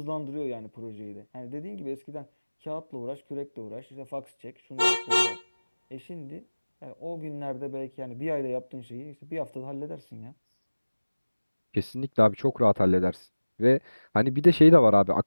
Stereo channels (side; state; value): both; inverted; correlation -1.00